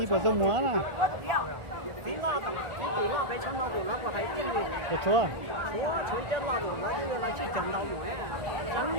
bờ sông múa nè. Được chưa?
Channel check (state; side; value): late; left; 1.4 ms